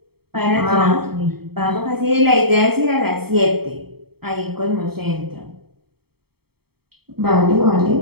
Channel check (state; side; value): late; left; 0.96 ms